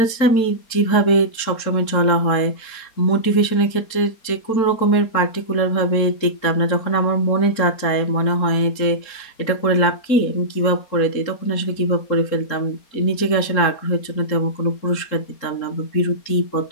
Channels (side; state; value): right; late; 4.3 ms